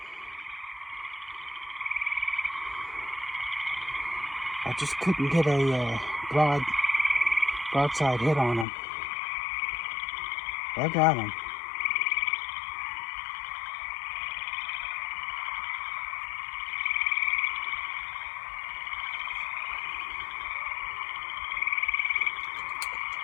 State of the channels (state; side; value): drops out; right; at 8.7 s